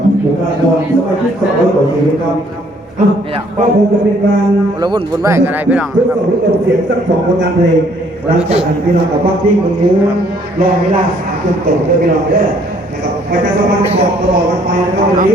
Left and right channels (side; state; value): both; normal; correlation 0.63